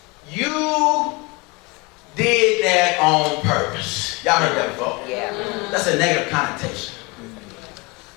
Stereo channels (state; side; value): quieter; right; 26.7 dB